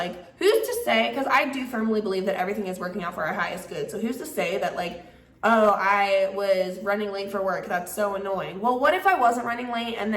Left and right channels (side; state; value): both; identical; correlation 1.00